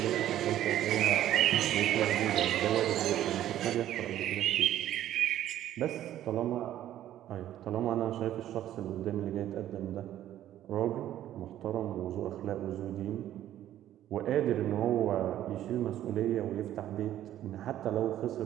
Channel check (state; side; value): quieter; left; 12.4 dB